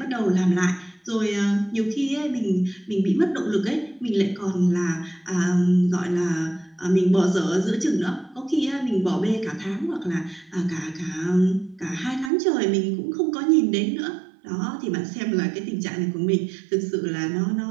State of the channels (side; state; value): left; drops out; at 12.3 s